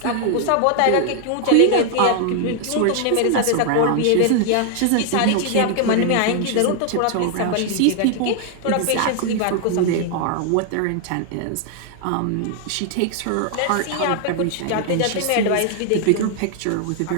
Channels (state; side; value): different; both; correlation 0.00